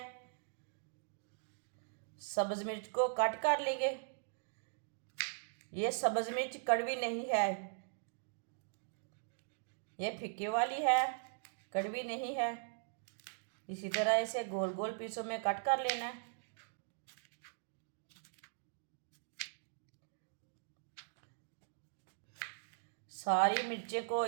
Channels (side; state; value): left; silent; digital silence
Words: सब्ज़ मिर्च को कट कर लेंगे। ये सब्ज़ मिर्च कड़वी नहीं है, ये फिक्की वाली है, कड़वी नहीं है। इसी तरह इसे गोल गोल पीसों में कट कर लेना है। सारी मिर्चें को